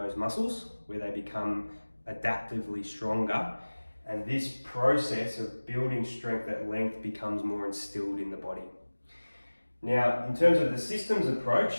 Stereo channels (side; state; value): both; inverted; correlation -1.00